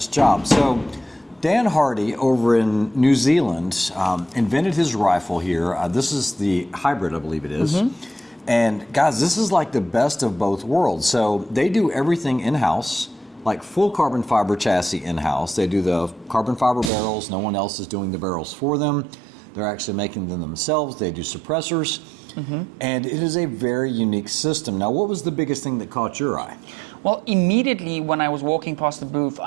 job. So Dan Hardy over in New Zealand invented his rifle here. This is the hybrid, I believe it is. And guys, this is like the best of both worlds. So they do everything in-house, like full carbon fiber chassis in-house. They do the carbon fiber barrels. No one else is doing the barrels for them. They're actually making them themselves. They do suppressors. And it is a very unique system. Now, what was the biggest thing that caught your eye? Well, immediately when I was walking past the booth,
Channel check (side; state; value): left; drops out; at 16.9 s